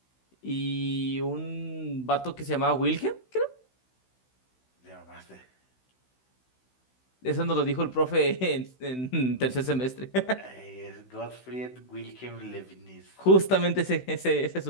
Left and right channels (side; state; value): right; late; 16 ms